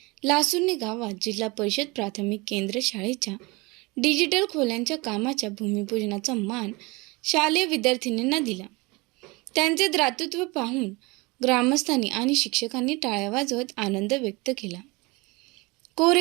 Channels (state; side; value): quieter; left; 25.2 dB